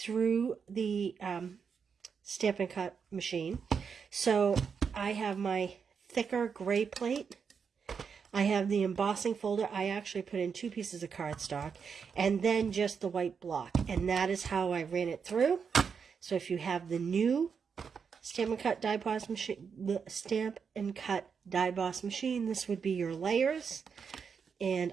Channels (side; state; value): left; quieter; 6.2 dB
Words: the Stamp and Cut machine. So I have my thicker gray plate. I have the embossing folder. I actually put in 2 pieces of cardstock and then just the white block. And that is how I ran it through. So if you have the new Stamp and Cut die boss machine, the Stamp and Cut die boss machine, this would be your layers. And